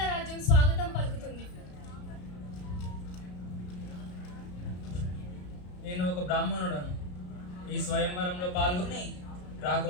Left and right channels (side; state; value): right; late; 34 ms